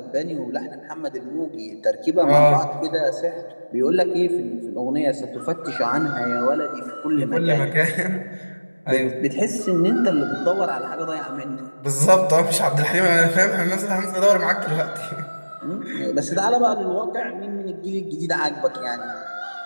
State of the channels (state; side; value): inverted; both; correlation -1.00